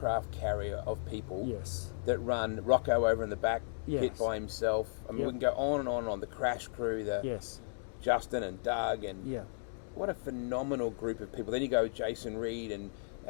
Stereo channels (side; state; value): right; silent; digital silence